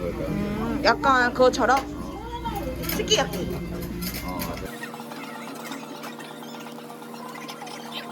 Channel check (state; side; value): identical; both; correlation 1.00